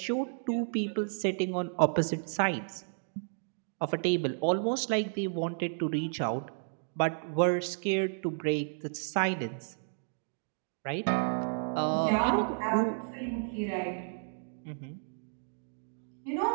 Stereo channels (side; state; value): left; silent; digital silence